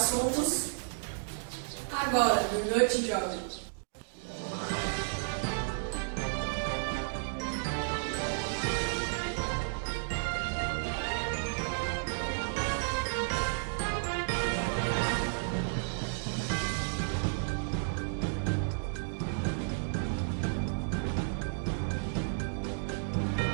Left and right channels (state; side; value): silent; left; digital silence